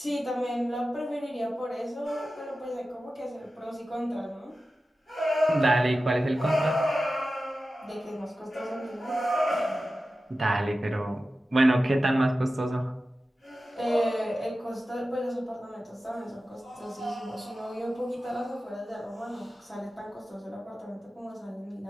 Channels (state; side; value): normal; both; correlation 0.94